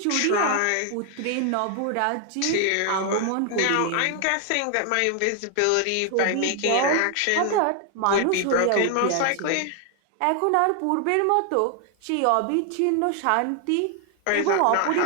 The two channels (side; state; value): both; different; correlation 0.00